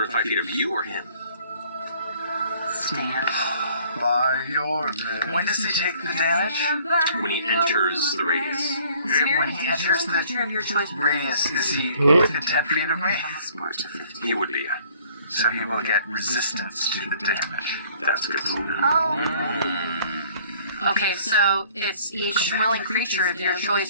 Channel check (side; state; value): both; inverted; correlation -0.56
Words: 5 feet of you or him. Stand. By your name. When does he take the damage? When he enters the radius. When he enters the radius, is he within 10 feet of me? He would be. So he will get resistance to the damage. That's good. Okay, so it's each willing creature of your